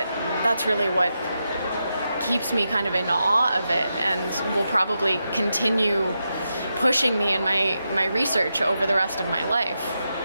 really what keeps me kind of in awe of it, and will probably continue pushing me in my research over the rest of my life.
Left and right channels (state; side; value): inverted; both; correlation -0.87